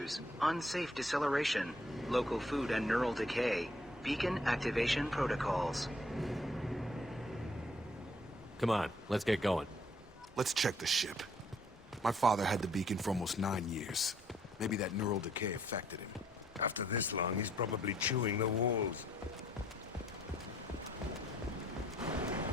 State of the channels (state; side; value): normal; both; correlation 0.65